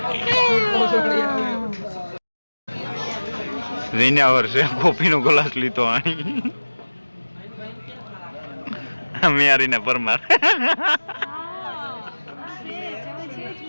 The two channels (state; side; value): inverted; both; correlation -1.00